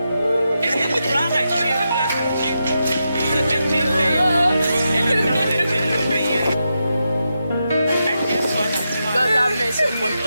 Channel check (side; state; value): both; inverted; correlation -0.86